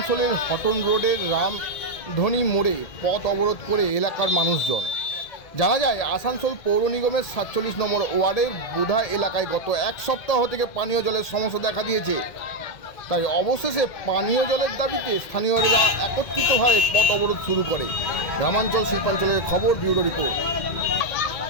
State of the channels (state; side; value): late; right; 2.0 ms